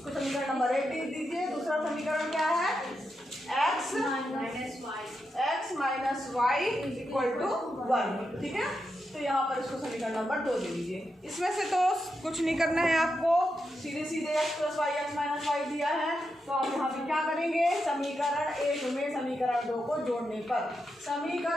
समीकरण नंबर 1 दीजिए। दूसरा समीकरण क्या है? x minus y equal to 1। ठीक है, तो यहाँ पर इसको समीकरण नंबर 2 दे दीजिए। इसमें से तो कुछ नहीं करना है आपको, सीधे सीधे x plus y x minus y दिया है तो आप यहाँ पे क्या करेंगे? समीकरण 1 में समीकरण 2 को जोड़ने पर,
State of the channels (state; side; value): normal; both; correlation 0.86